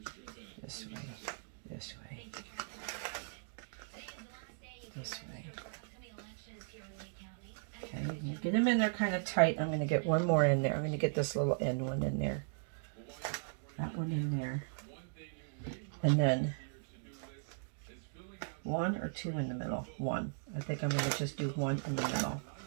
This way. This way. This way. Okay, get them in there kind of tight. I'm going to get one more in there. I'm going to get this little end one in there. That one in there. And then 1 or 2 in the middle. 1. I think I'm going to just do 1 in the middle.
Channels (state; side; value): silent; left; digital silence